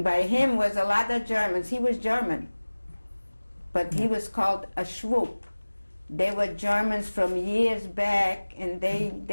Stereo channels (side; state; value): both; inverted; correlation -1.00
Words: by him was a lot of Germans. He was German, but he was called a Schwupp. They were Germans from years back, and they